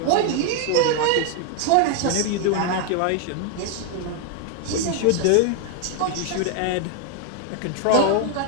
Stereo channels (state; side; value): different; both; correlation 0.00